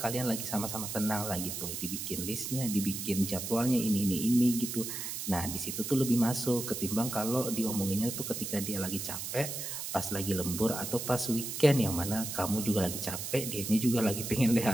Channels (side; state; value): right; noise; hiss, 5 dB below the sound